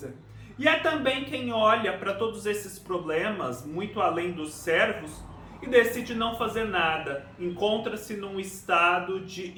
E há também quem olha para todos esses problemas, muito além dos servos, e decide não fazer nada, encontra-se num estado de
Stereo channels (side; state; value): both; identical; correlation 1.00